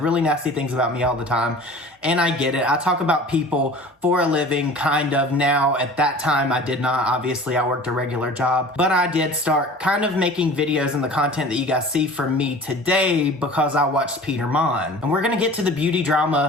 really nasty things about me all the time, and I get it. I talk about people for a living, kind of. Now, at that time, I did not. Obviously, I worked a regular job, but I did start kind of making videos and the content that you guys see from me today because I watched Peter Mon. And we're gonna get to the beauty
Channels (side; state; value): both; normal; correlation 0.42